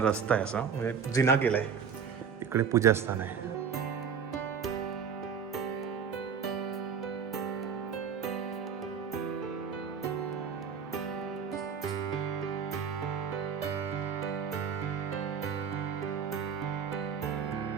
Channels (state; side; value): quieter; left; 6.7 dB